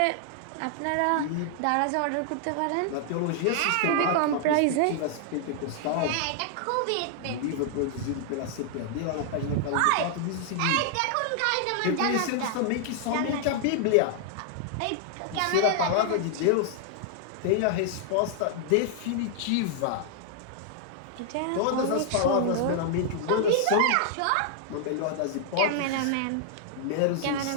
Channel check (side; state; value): both; different; correlation 0.00